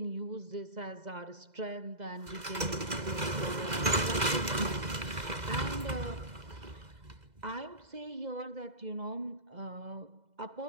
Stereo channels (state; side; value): late; left; 2.0 ms